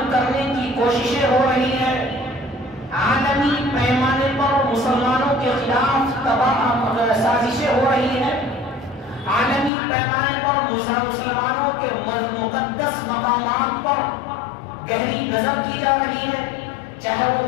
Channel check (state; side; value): drops out; right; at 9.7 s